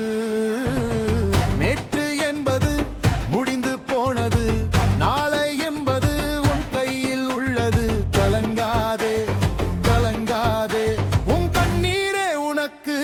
நேற்று என்பது முடிந்து போனது, நாளை என்பது உன் கையில் உள்ளது. கலங்காதே கலங்காதே, உன் கண்ணீரே உனக்கு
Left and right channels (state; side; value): identical; both; correlation 1.00